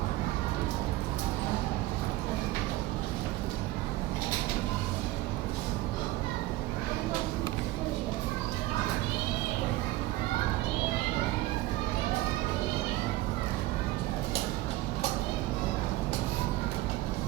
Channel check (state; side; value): quieter; left; 17.5 dB